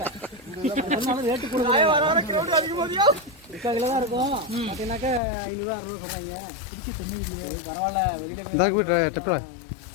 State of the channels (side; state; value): right; drops out; at 5.2 s